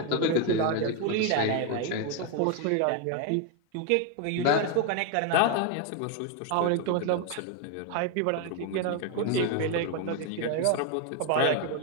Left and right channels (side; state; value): both; different; correlation 0.01